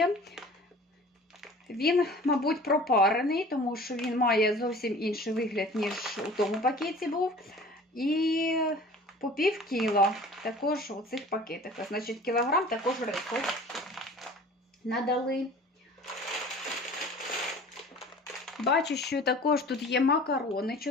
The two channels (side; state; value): both; normal; correlation 0.45